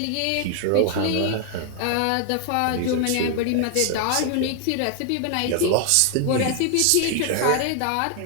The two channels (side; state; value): both; different; correlation 0.00